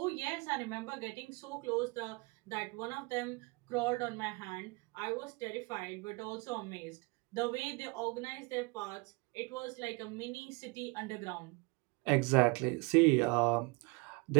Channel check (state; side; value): quieter; left; 28.3 dB